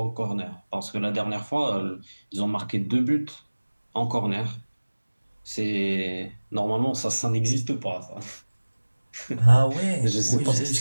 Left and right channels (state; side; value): inverted; both; correlation -1.00